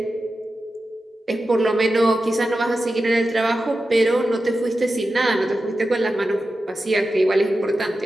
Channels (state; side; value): normal; both; correlation 0.92